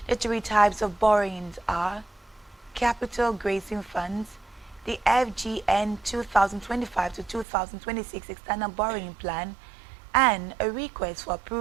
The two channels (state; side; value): drops out; left; at 7.5 s